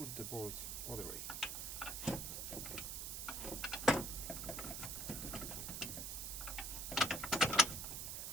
the bolt other way.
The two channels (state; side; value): noise; right; hiss, 4 dB below the sound